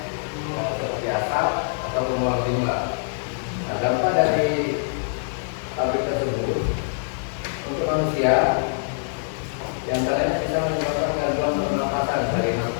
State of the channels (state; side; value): silent; right; digital silence